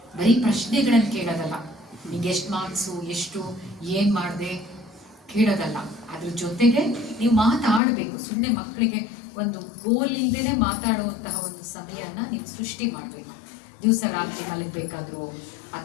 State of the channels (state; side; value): drops out; right; at 7.8 s